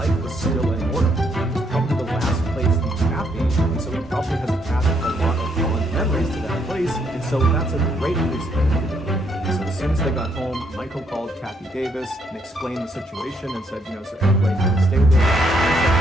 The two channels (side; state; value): both; normal; correlation 0.73